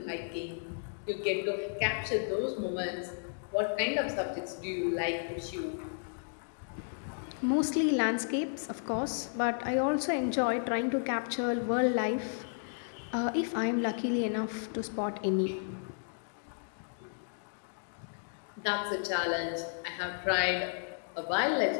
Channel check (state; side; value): silent; right; digital silence